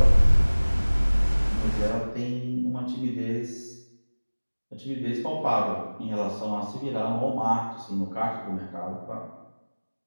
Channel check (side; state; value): both; inverted; correlation -1.00